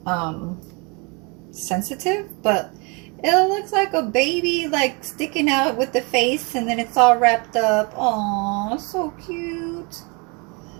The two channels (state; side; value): quieter; left; 30.9 dB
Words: sensitive, but it looks like a baby like sticking out with the face, and then it's all wrapped up. Oh, so cute.